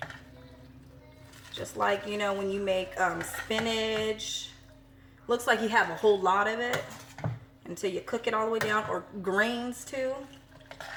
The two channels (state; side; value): identical; both; correlation 1.00